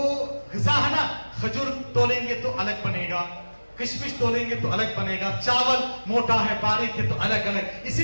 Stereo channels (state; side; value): inverted; both; correlation -1.00